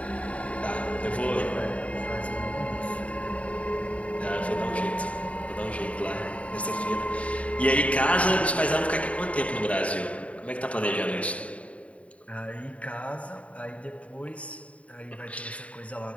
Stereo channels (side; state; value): right; late; 0.066 ms